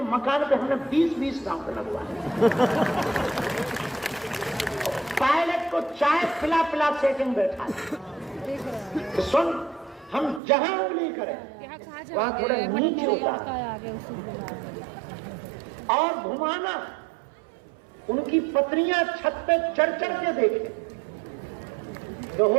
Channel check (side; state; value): left; drops out; at 10.4 s